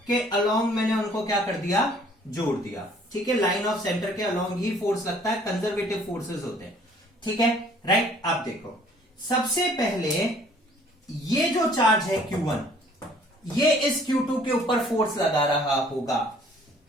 के अलोंग मैंने उनको क्या कर दिया? जोड़ दिया, ठीक है। लाइन ऑफ सेंटर के अलोंग ही फोर्स लगता है, कंजर्वेटिव फोर्सेस होते हैं, ठीक है, राइट। अब देखो, सबसे पहले ये जो चार्ज है Q1, ये इस Q2 के ऊपर फोर्स लगा रहा होगा,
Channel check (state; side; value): normal; both; correlation 0.57